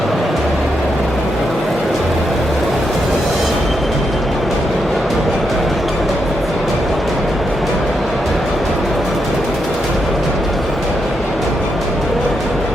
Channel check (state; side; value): normal; both; correlation 0.82